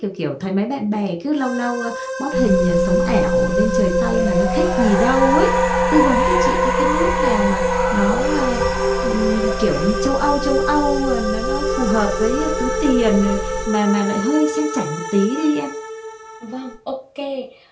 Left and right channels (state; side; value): identical; both; correlation 1.00